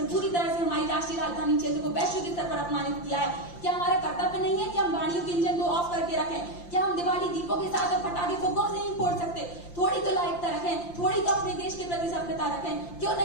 पूरी तरह से हमारी राष्ट्रीय राजधानी क्षेत्र को वैश्विक स्तर पर अपमानित किया है। क्या हमारा कर्तव्य नहीं है कि हम गाड़ियों के इंजन को ऑफ करके रखें? क्या हम दिवाली दीपों के साथ और पटाखे फुग्गों से नहीं फोड़ सकते? थोड़ी तो लायकता रखें, थोड़ी तो अपने देश के प्रति सभ्यता रखें। क्यों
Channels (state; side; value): late; right; 5.8 ms